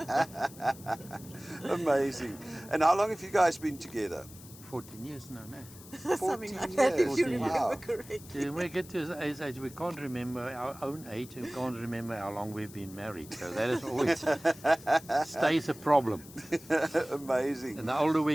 Amazing. And how long have you guys been together? 14 years now, no. Something 14 like that, if years. you 14 remember Wow. correctly. When we get to his age, we can't remember our own age and we can't remember how long we've been married. So that is always stays a problem. Amazing. And the older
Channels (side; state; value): left; noise; hiss, 19 dB below the sound